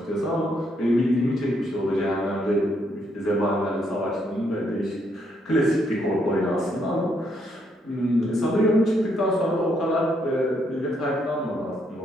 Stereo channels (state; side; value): normal; both; correlation 0.74